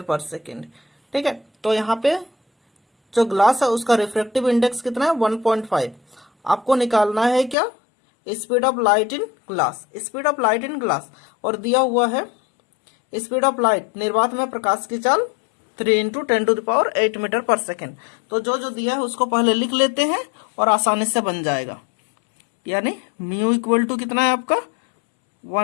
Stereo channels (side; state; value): right; drops out; at 7.6 s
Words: पर second. ठीक है, तो यहाँ पे जो glass है उसका refractive index कितना है? 1.5। आपको निकालना है क्या? Speed of light in glass. Speed of light in glass, और दिया हुआ है स्पीड ऑफ लाइट, निर्वात में प्रकाश की चाल 3 into 10 to the power 8 metre पर सेकेंड। तो जो दिया है उसको पहले लिख लेते हैं और आसानी से बन जाएगा। यानी म्यू इक्वल टू कितना है आपका?